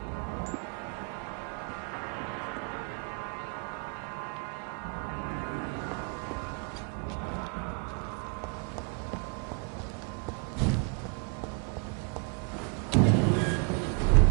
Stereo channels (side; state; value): left; quieter; 36.1 dB